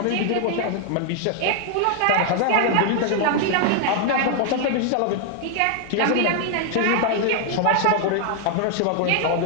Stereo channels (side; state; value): both; different; correlation 0.00